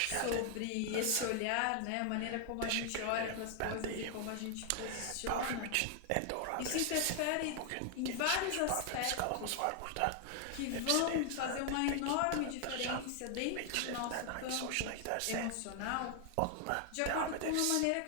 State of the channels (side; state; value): both; different; correlation 0.00